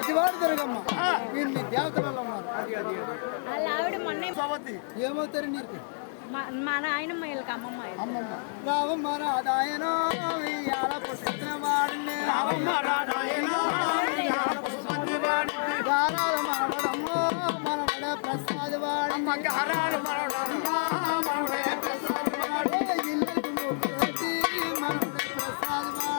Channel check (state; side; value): silent; right; digital silence